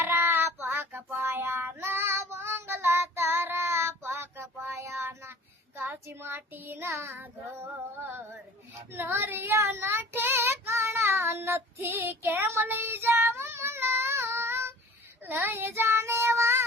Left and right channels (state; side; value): normal; both; correlation 0.46